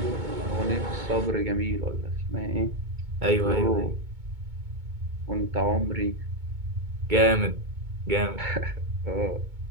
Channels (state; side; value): late; left; 2.2 ms